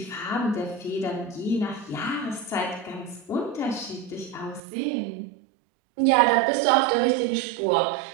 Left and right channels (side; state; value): left; drops out; at 4.6 s